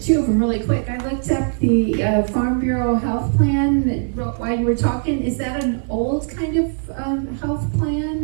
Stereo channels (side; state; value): left; silent; digital silence